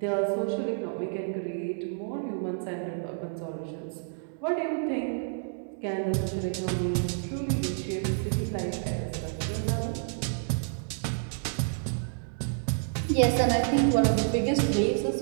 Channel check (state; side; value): silent; left; digital silence